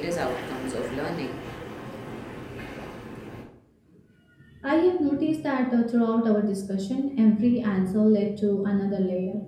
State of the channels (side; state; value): both; identical; correlation 1.00